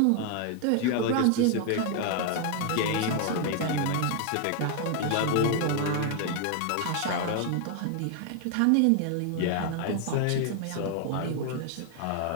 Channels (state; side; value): different; both; correlation 0.00